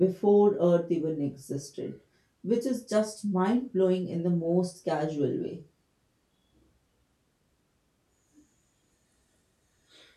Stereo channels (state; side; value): identical; both; correlation 1.00